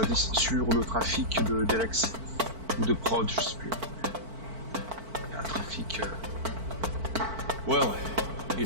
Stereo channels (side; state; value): left; late; 4.5 ms